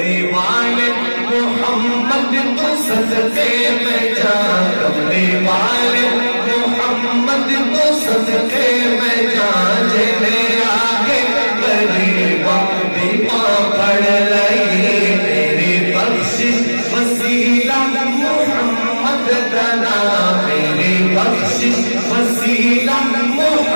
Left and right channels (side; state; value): both; inverted; correlation -1.00